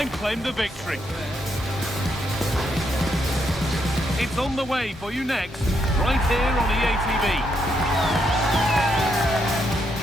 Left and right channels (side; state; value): both; normal; correlation 0.78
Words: claim the victory? It's on the way for you next, right here on EA TV.